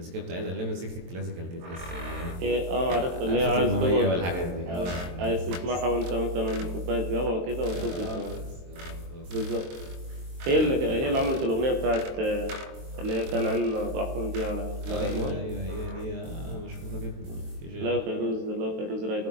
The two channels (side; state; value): left; late; 23 ms